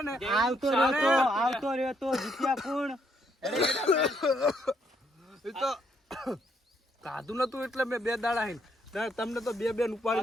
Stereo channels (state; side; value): normal; both; correlation 0.73